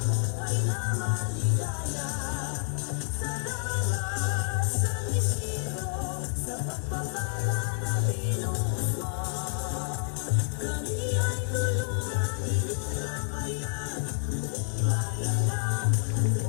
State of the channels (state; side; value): silent; right; 59 dB below the other